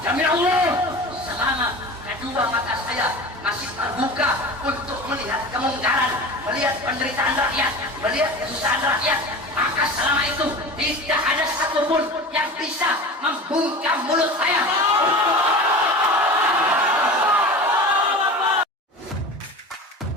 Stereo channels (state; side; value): normal; both; correlation 0.33